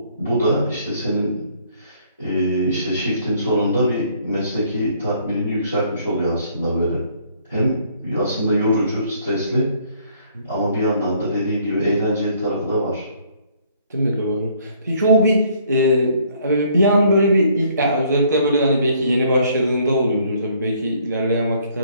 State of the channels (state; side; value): inverted; both; correlation -0.63